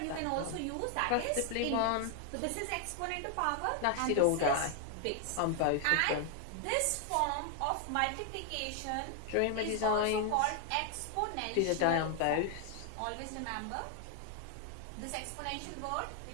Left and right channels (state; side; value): different; both; correlation 0.00